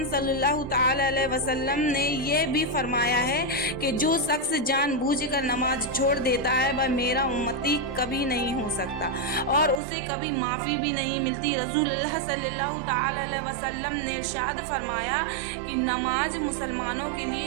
सल्लल्लाहु ताला अलैहि वसल्लम ने यह भी फरमाया है कि जो शख्स जानबूझकर नमाज छोड़ देता है वह मेरा उम्मती कभी नहीं हो सकता और उसे कभी माफ़ी भी नहीं मिलती। रसूलुल्लाह सल्लल्लाहु ताला अलैहि वसल्लम ने इरशाद फरमाया कि नमाज मुसलमानों के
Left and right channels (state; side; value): drops out; left; at 9.8 s